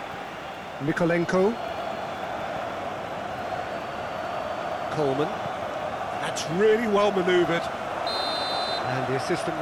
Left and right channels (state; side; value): identical; both; correlation 1.00